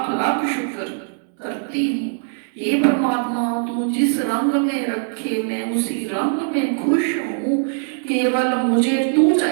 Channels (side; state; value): left; silent; digital silence